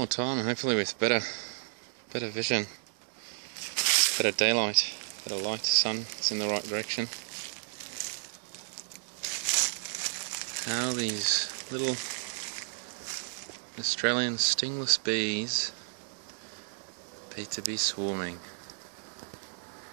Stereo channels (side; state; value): left; silent; digital silence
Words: time, and hopefully with better vision, better daylight, better light, sun, it's in the right direction. How these little Australian stingless bees appear to be swarming.